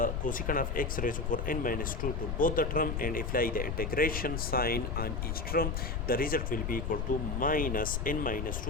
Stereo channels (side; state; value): left; noise; rumble, 2 dB below the sound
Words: cosecant of x raised to power n minus 2 to both the term and apply the integration sign on each term. The result will be equal to minus n minus